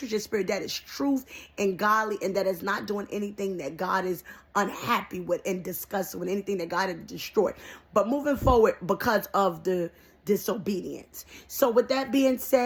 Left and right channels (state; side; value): identical; both; correlation 1.00